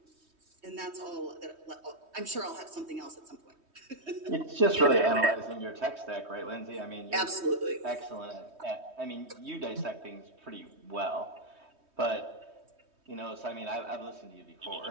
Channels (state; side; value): late; left; 3.2 ms